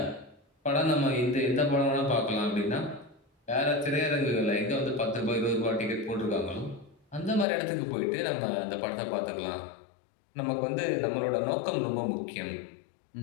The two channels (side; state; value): right; drops out; at 7.5 s